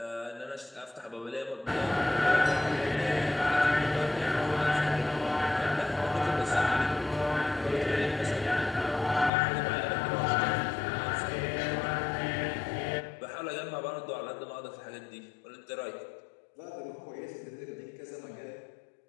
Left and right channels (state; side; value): drops out; right; at 9.3 s